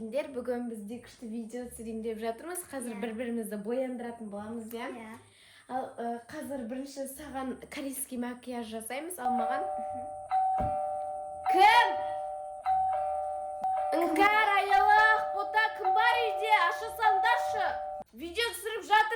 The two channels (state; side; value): identical; both; correlation 1.00